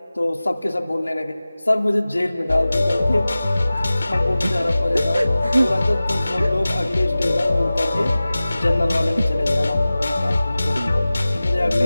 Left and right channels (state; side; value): inverted; both; correlation -0.97